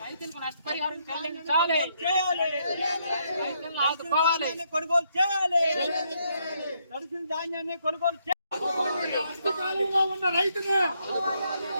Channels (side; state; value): both; inverted; correlation -0.74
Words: రైతులకు నష్టపరిహారం చెల్లించాలి. రైతులను ఆదుకోవాలి. కొనుగోలు చేయాలి. తడిసిన ధాన్యాన్ని కొనుగోలు చేయాలి. కష్టకాలంలో ఉన్న రైతుని,